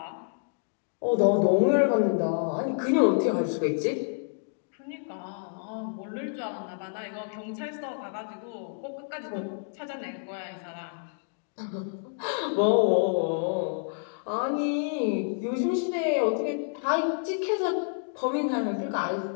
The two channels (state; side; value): silent; right; digital silence